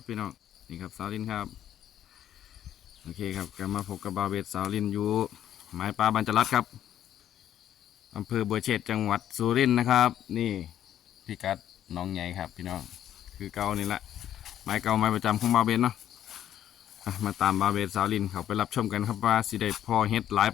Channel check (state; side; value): quieter; right; 11.0 dB